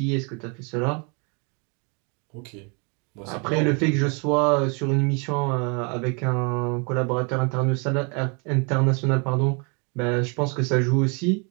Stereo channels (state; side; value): quieter; left; 34.2 dB